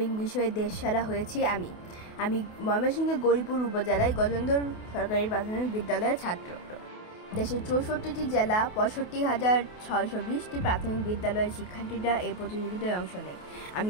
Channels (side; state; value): right; late; 28 ms